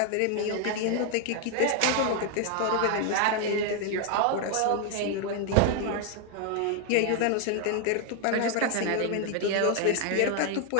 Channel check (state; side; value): different; both; correlation 0.00